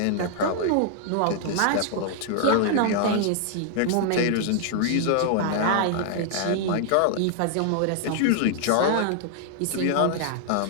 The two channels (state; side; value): different; both; correlation 0.00